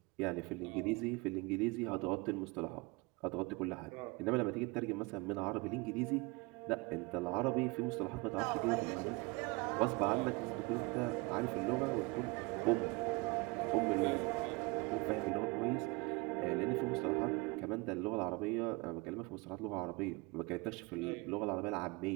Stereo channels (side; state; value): left; quieter; 26.0 dB